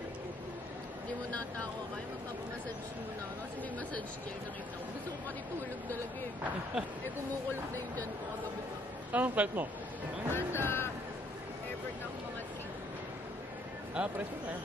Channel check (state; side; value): normal; both; correlation 0.65